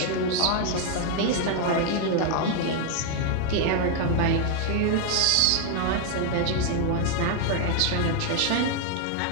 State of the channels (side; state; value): both; different; correlation 0.00